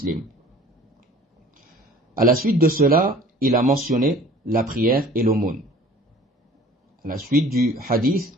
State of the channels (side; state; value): both; normal; correlation 0.49